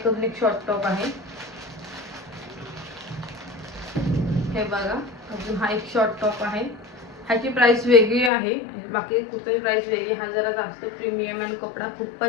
एक शॉर्ट टॉप आहे, हे बघा. अजून हा एक शॉर्ट टॉप आहे, ह्याची प्राइस वेगळी आहे, बाकी कुठल्याही प्राइस वेगळी. हा जरा जास्त प्रीमियम आणि कपडा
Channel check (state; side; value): drops out; right; at 8.3 s